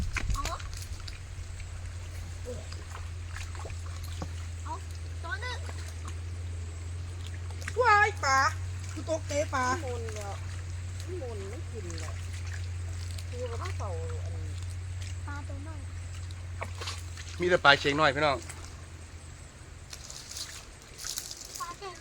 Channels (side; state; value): both; identical; correlation 1.00